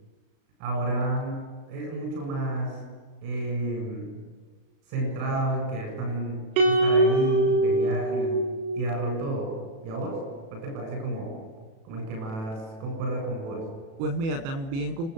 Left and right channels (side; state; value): left; late; 36 ms